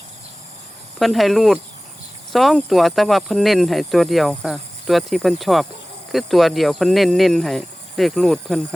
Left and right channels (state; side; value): normal; both; correlation 0.98